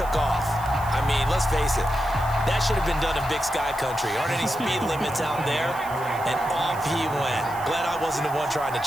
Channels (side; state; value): right; noise; hiss, 18 dB below the sound